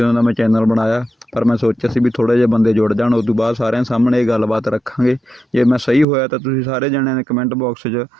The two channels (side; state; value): left; drops out; at 6.1 s